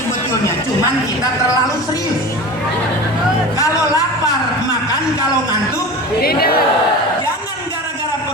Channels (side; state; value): both; normal; correlation 0.32